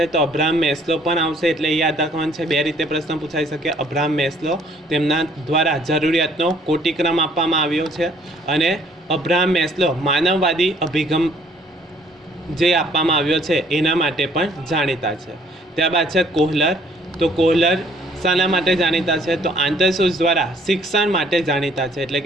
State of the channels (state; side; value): normal; both; correlation 0.61